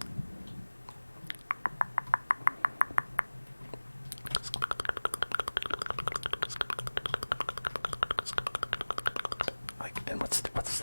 Like, and what's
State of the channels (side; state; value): both; inverted; correlation -1.00